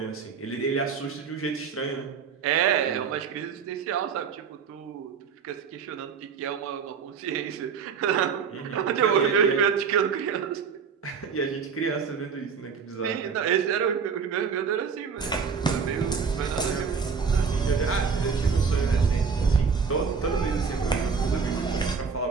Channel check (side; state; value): left; quieter; 6.0 dB